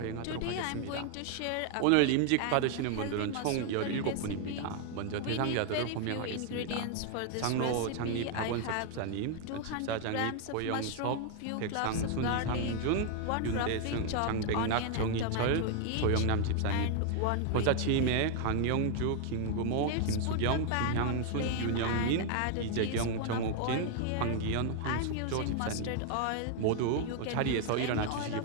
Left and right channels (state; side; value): different; both; correlation 0.00